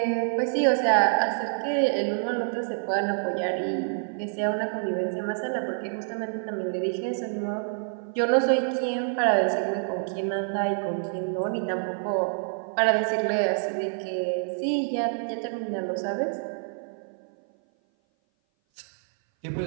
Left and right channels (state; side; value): silent; left; 57 dB below the other